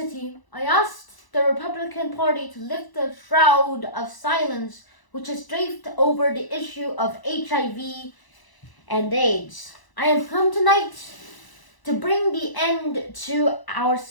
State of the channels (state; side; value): late; right; 1.0 ms